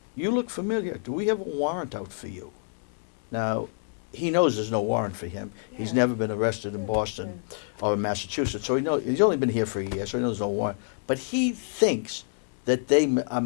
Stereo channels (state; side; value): silent; right; digital silence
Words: you look familiar. Do we have a warrant out for you? Now, he knows there's no warrant for him. Yeah. He's never been arrested in Boston or in Massachusetts, so he's only been here for a year, so he knows there's no warrant. But he thinks that they are